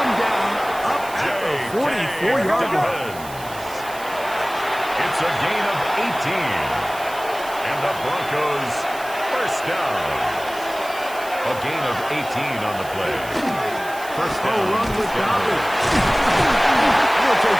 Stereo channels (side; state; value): right; noise; hiss, 16 dB below the sound